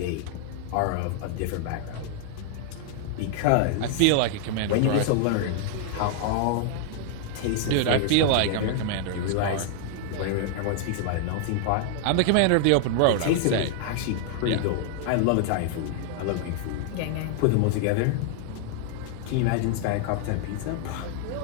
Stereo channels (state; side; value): different; both; correlation 0.00